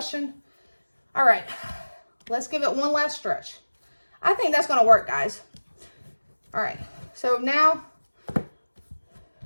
All right, let's give it one last stretch. I think that's going to work, guys. All right, so now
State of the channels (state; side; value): inverted; both; correlation -1.00